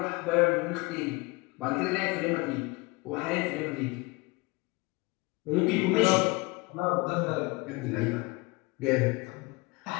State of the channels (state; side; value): quieter; right; 24.9 dB